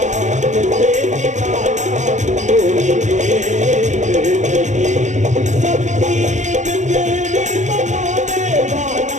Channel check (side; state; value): left; late; 0.35 ms